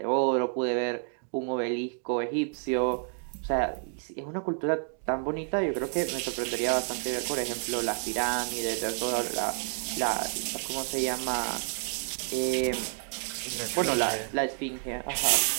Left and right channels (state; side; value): silent; left; 58 dB below the other